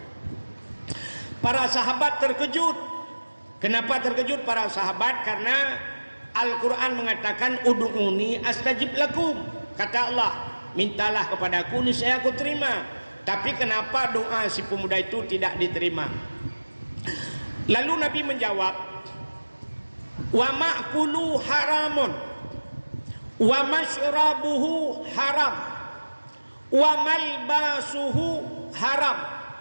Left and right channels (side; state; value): both; inverted; correlation -1.00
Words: Para sahabat terkejut. Kenapa terkejut para sahabat? Karena Al-Quran mengatakan ud'uni astajib lakum. Kata Allah, mintalah kepadaku niscaya aku terima. Tapi kenapa doa si pemuda itu tidak diterima? Lalu Nabi menjawab, wa ma'kulu haramun, wa masyrabuhu haram, wa malbasuhu haram.